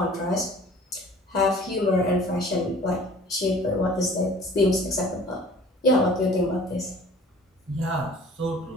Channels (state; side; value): normal; both; correlation 0.48